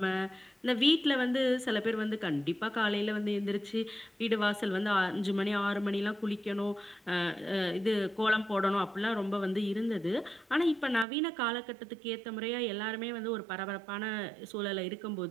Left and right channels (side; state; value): left; drops out; at 11.1 s